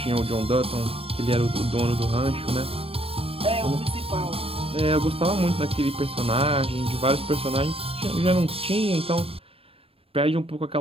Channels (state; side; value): late; left; 0.28 ms